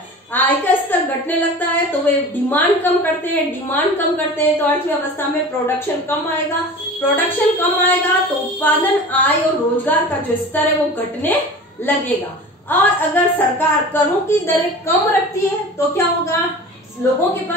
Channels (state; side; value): normal; both; correlation 0.37